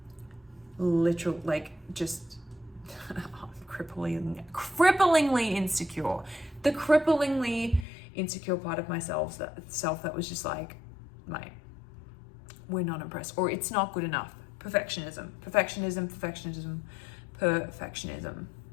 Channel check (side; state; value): right; drops out; at 7.9 s